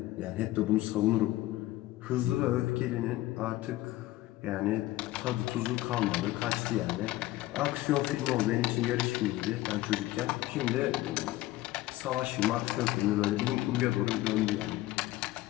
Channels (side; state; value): right; quieter; 16.8 dB